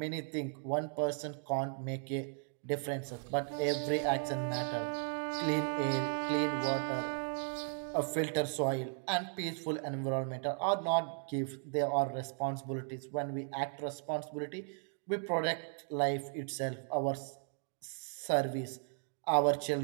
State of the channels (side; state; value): left; silent; 54 dB below the other